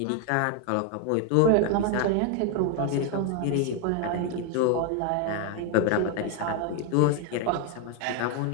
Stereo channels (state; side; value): different; both; correlation 0.01